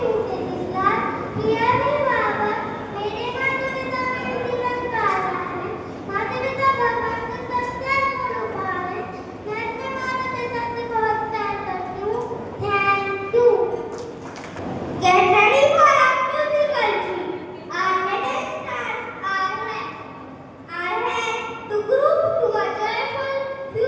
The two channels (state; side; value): identical; both; correlation 1.00